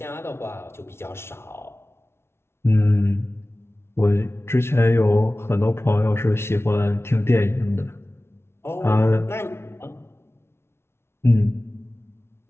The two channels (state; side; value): late; right; 0.12 ms